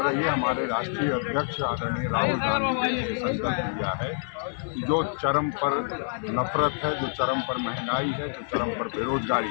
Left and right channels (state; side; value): silent; right; digital silence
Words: रही है। हमारे राष्ट्रीय अध्यक्ष आदरणीय राहुल गांधी जी ने संकल्प लिया है कि जो चरम पर नफरत है, जो चरम पर महंगाई है, जो चरम पर